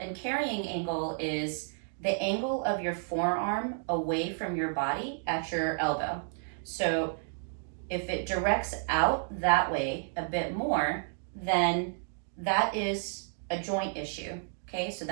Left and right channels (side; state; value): left; silent; digital silence